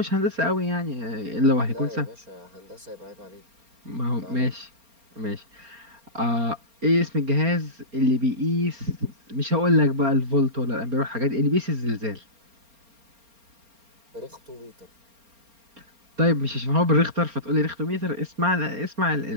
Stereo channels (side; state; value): left; late; 4.3 ms